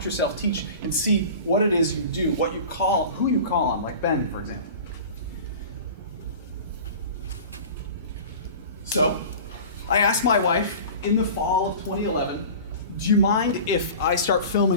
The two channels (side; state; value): both; inverted; correlation -0.38